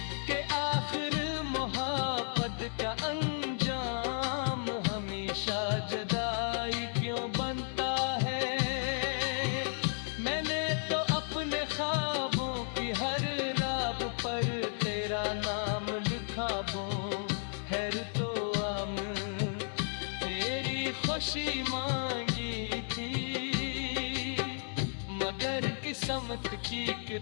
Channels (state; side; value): silent; right; digital silence